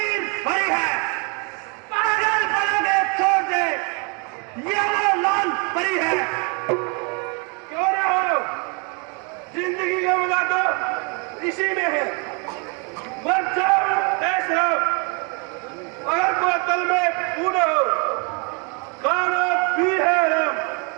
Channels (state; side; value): quieter; left; 34.4 dB